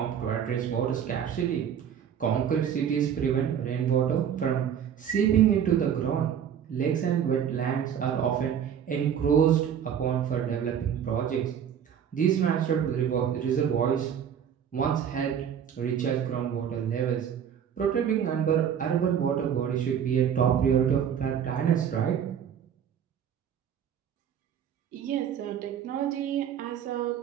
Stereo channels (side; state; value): left; quieter; 8.6 dB